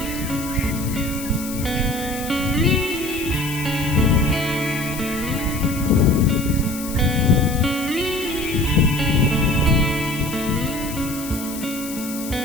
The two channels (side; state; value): left; noise; hiss, 11 dB below the sound